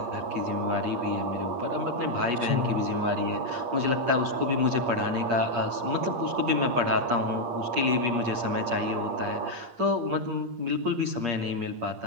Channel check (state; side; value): late; left; 8.5 ms